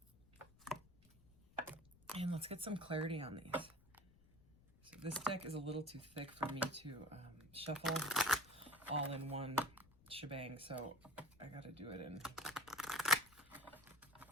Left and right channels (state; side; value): noise; left; rumble, 26 dB below the sound